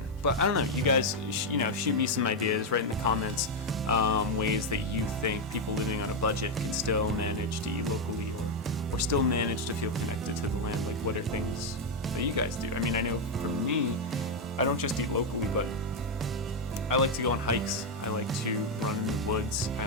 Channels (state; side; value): normal; both; correlation 0.03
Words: But I don't know, you guys, shoot me some ideas, right in the comments, ways that you think people living on a budget can still manage to eat locally, or still manage to feel connected to the land. Like, what are things that you guys do? I know for me, I don't just eat locally, but I like to go on hikes. I like to run in the woods. I